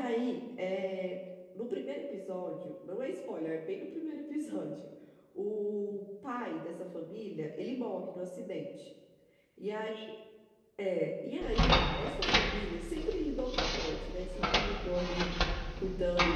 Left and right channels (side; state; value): both; identical; correlation 1.00